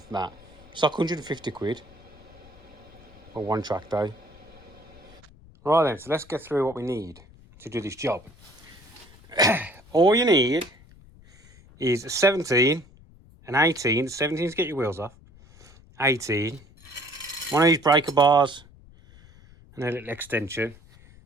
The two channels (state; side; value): noise; left; rumble, 24 dB below the sound